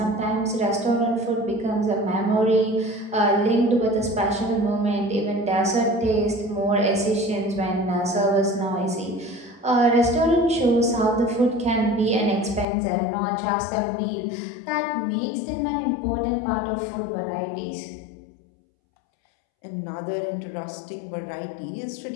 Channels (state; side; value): drops out; right; at 12.7 s